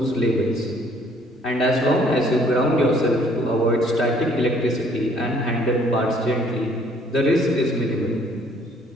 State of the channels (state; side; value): normal; both; correlation 0.61